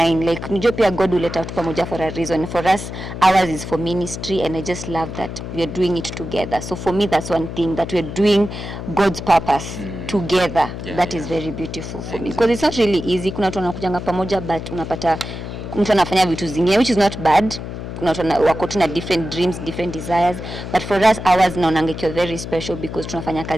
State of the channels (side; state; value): left; noise; hum, 8 dB below the sound